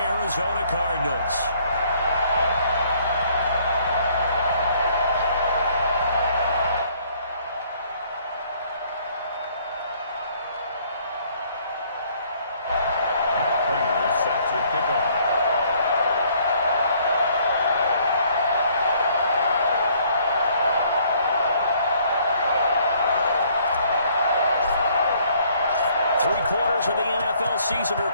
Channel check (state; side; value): inverted; both; correlation -0.63